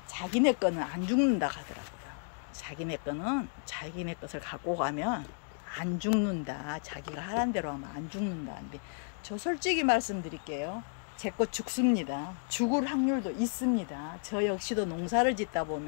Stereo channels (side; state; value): right; silent; 56 dB below the other